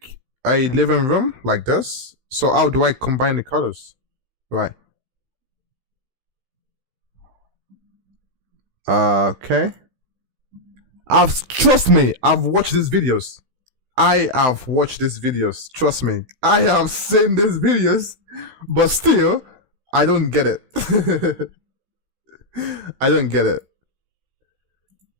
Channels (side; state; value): left; late; 16 ms